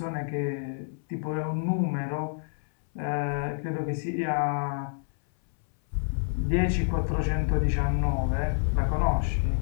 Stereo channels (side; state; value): right; silent; 59 dB below the other